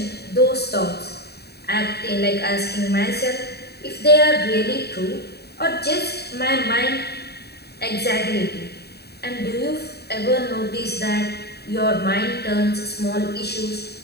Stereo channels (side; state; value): right; late; 0.47 ms